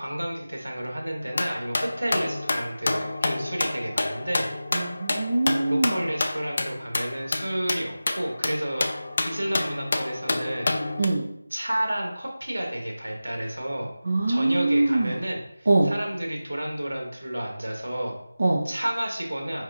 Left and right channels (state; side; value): inverted; both; correlation -0.96